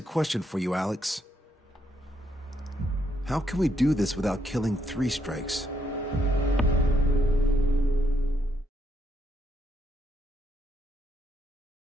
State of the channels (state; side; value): normal; both; correlation 0.76